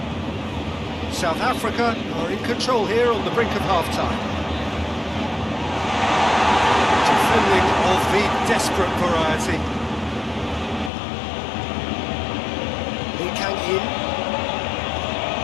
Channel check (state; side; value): drops out; right; at 10.9 s